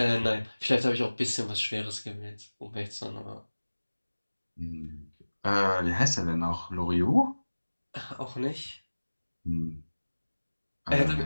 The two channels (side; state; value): both; inverted; correlation -1.00